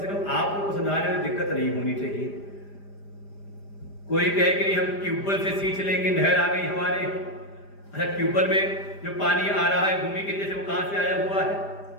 कम आप लोग को समझाने में दिक्कत नहीं होनी चाहिए। कोई कहे कि नहीं हम ट्यूबवेल से सींच लेंगे, नहर आ गई हमारे। अच्छा, ट्यूबवेल में जो पानी आ रहा है भूमि के नीचे से, वो कहां से आया हुआ है?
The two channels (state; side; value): late; right; 5.0 ms